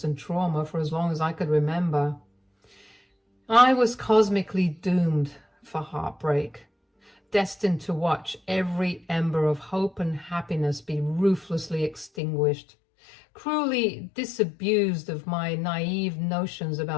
and trauma for as long as I could remember. I was cosmically doomed for heartbreak, destined to watch every ember of hope and happiness be ruthlessly extinguished, cruelly disabused of my naive notions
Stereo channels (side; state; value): right; drops out; at 12.1 s